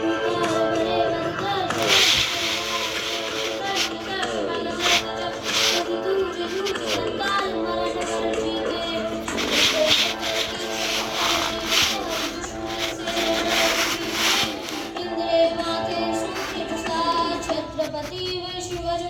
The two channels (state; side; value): identical; both; correlation 1.00